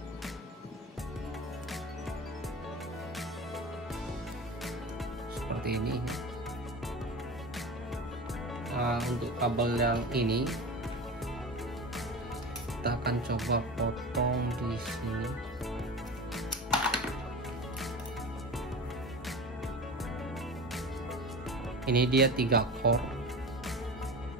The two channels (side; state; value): both; normal; correlation 0.30